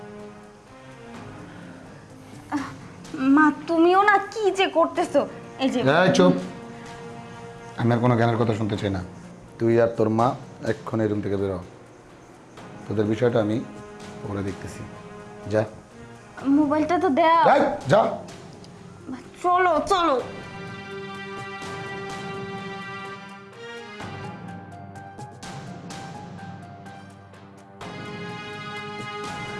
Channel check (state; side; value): identical; both; correlation 1.00